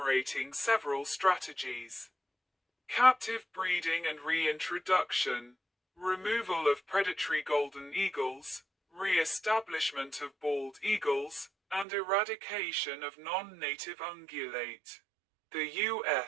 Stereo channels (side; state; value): left; drops out; at 11.9 s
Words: several strategies: captive breeding and reintroduction, removal of predatory golden eagles, re-establishment of bald eagles, and eradication of non-native ungulate. The